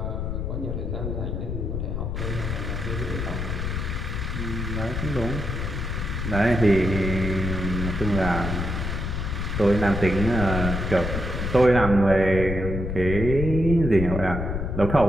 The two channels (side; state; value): left; noise; rumble, 3 dB below the sound